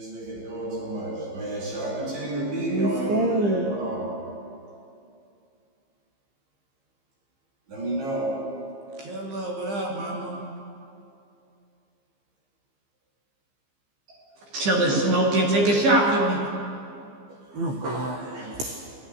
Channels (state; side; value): late; left; 15 ms